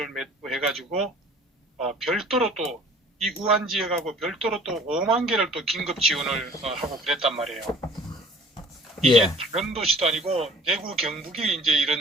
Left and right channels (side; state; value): both; normal; correlation 0.49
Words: 맺고 해가지고 별도로 또 이 우한 지역하고 별도로 또 5만 개를 또 긴급 지원을 하고 그랬단 말이에요. 이게 예. 다른 도시도 아니고 대구 경북이 이제 이런